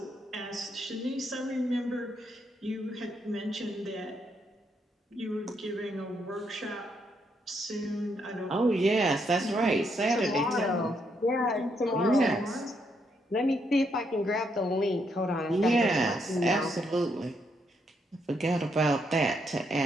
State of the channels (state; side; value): normal; both; correlation 0.76